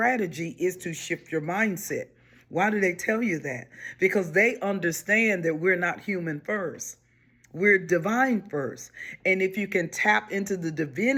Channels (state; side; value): identical; both; correlation 1.00